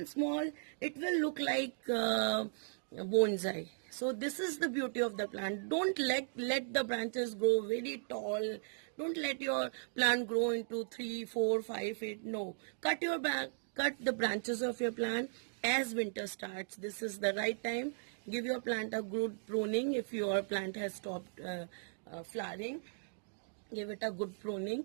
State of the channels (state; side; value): silent; left; digital silence